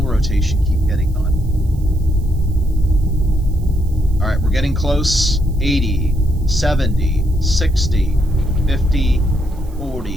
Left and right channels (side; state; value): right; noise; hiss, 28 dB below the sound